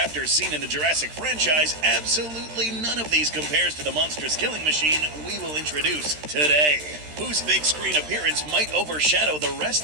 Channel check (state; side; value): late; left; 13 ms